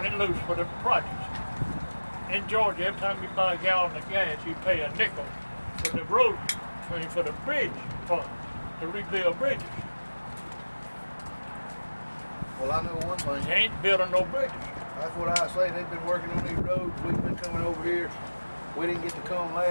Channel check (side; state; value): both; inverted; correlation -1.00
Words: it loose for the projects. In Georgia, every time you buy a gallon of gas, you pay a nickel for the road, for the bridge fund, to rebuild bridges. Well, I know one thing. You ain't building no bridges. That's what I say. They've been working on these roads. We've been coming over here. We didn't get to come